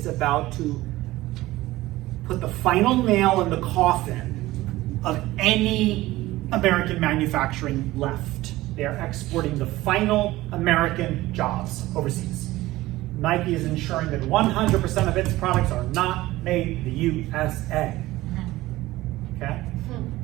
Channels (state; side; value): quieter; left; 17.6 dB